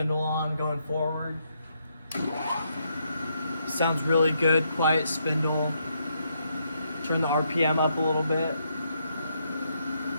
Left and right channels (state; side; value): inverted; both; correlation -0.77